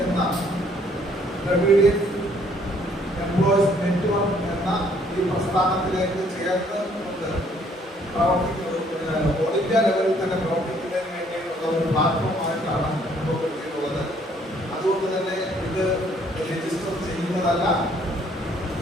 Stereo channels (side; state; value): both; normal; correlation 0.64